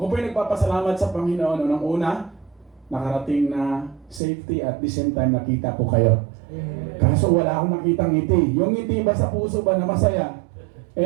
po ay nagpapasalamat sa Panginoon. Unang-una, nakarating na safety at the same time nakita ko kayo. Kaso wala akong nakitang ngiti. Yung ngiti ba sa puso ba na masaya?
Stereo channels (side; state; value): left; drops out; at 4.2 s